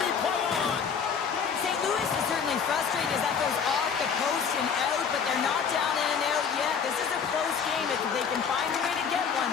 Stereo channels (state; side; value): quieter; right; 6.6 dB